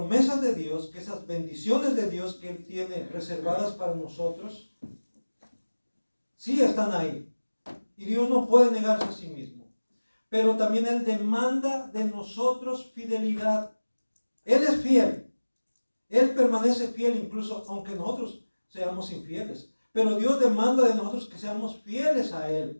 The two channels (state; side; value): inverted; both; correlation -1.00